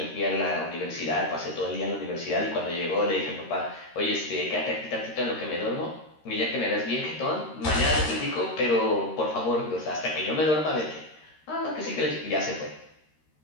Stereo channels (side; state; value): right; late; 13 ms